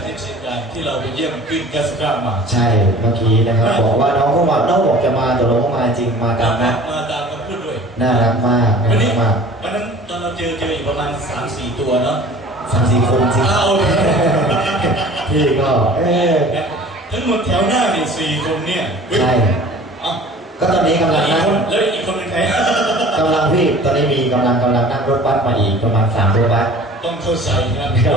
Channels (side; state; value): both; normal; correlation 0.45